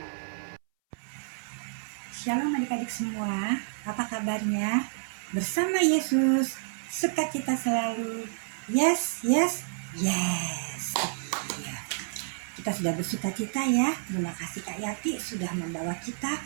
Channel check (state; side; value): silent; left; 58 dB below the other